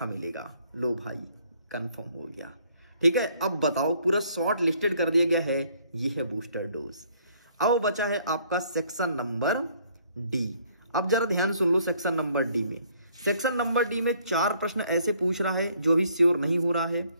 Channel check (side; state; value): both; inverted; correlation -0.64